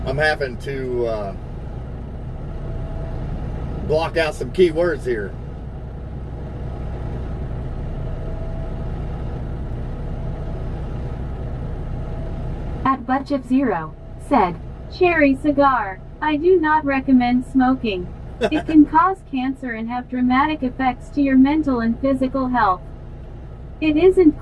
I'm having to block out some key words here. At Butchip0 said, cherry cigar. I do not recommend smoking. It can cause cancer and have dramatic effects to your mental and physical health. It isn't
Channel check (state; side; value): identical; both; correlation 1.00